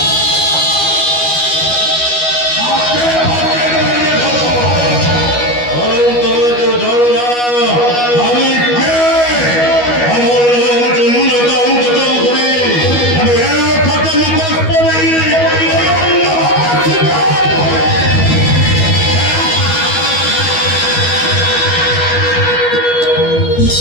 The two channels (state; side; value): late; right; 12 ms